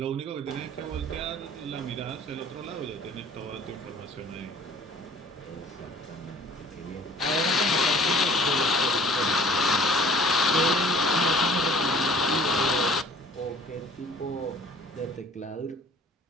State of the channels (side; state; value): both; normal; correlation 0.49